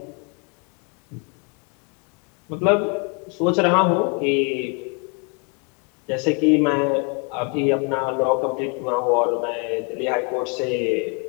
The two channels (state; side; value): quieter; right; 36.2 dB